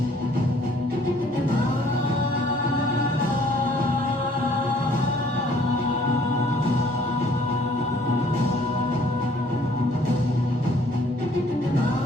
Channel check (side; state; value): both; normal; correlation 0.59